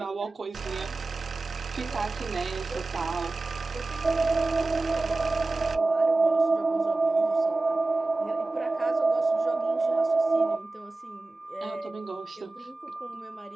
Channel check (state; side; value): quieter; left; 3.3 dB